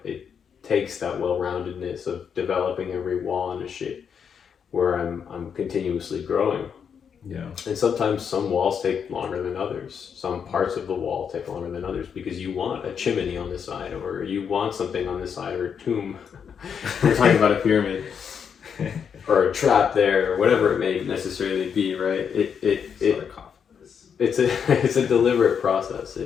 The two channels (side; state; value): right; quieter; 7.2 dB